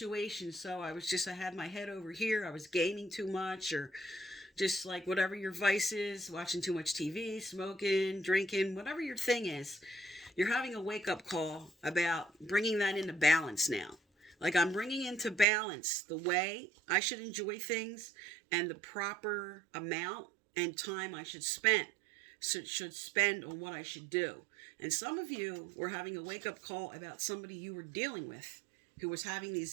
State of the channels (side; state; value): left; drops out; at 15.5 s